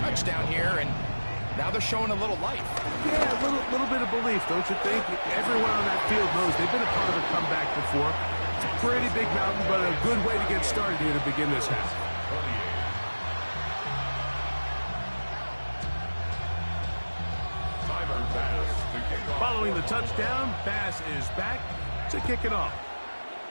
here, and now they're showing a little life. Yeah, a little bit of belief, don't you think? Everyone on that field knows they've been a part of a comeback before. It's a pretty big mountain, but a good way to get started here to begin this half. Timer pass to gain Following the touchdown, Bass is back to kick it off.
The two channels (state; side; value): inverted; both; correlation -1.00